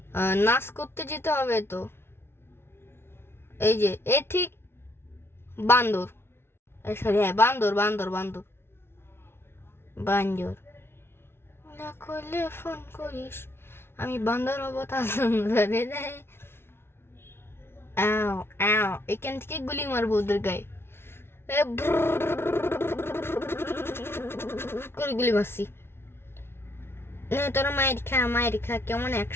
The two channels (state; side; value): late; right; 0.12 ms